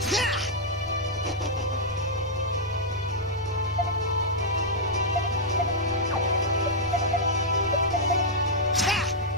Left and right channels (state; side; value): normal; both; correlation -0.06